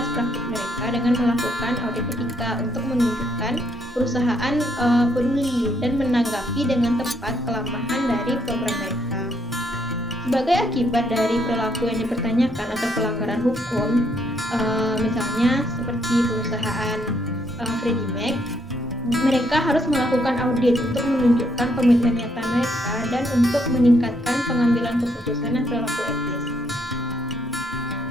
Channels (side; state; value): both; normal; correlation 0.73